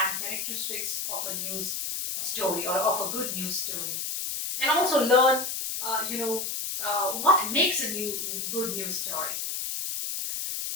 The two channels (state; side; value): noise; left; hiss, 3 dB below the sound